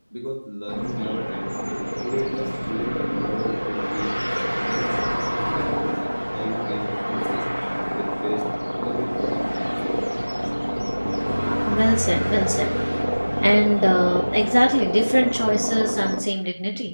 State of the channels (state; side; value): inverted; both; correlation -1.00